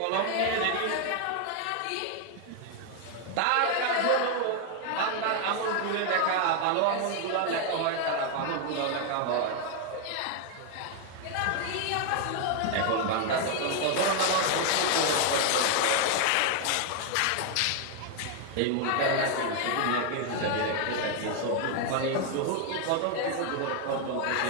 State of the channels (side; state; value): both; different; correlation 0.00